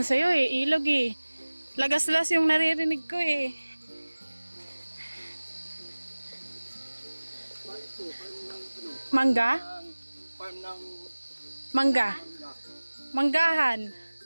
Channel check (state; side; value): inverted; both; correlation -1.00